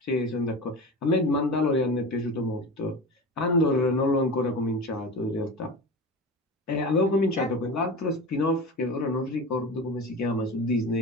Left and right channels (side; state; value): both; normal; correlation 0.30